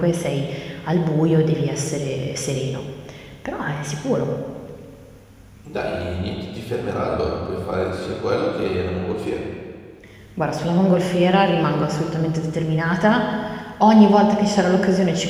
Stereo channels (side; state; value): both; identical; correlation 1.00